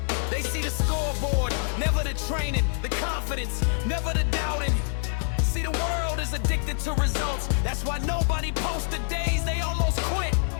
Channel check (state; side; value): silent; right; digital silence